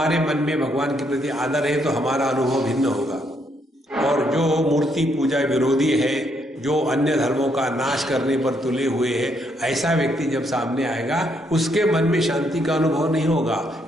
मन में भगवान के प्रति आदर है तो हमारा अनुभव भिन्न होगा, और जो मूर्ति पूजा विरोधी है, जो अन्य धर्मों का नाश करने पर तुले हुए है, ऐसा व्यक्ति जब सामने आएगा उसके मन में शांति का अनुभव नहीं होगा,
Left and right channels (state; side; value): normal; both; correlation 0.74